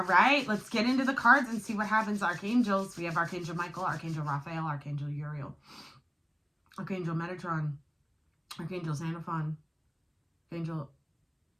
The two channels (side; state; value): both; identical; correlation 1.00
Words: right, let's get into the cards and see what happens. Archangels, we have Archangel Michael, Archangel Raphael, Archangel Uriel, Archangel Metatron, Archangel Xenophon, Archangel